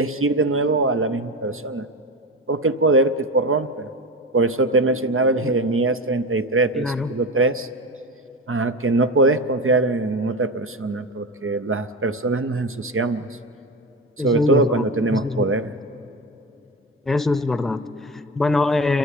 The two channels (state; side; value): normal; both; correlation 0.24